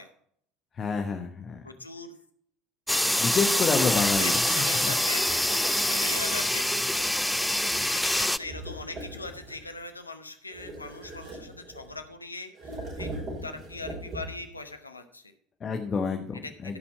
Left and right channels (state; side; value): normal; both; correlation 0.86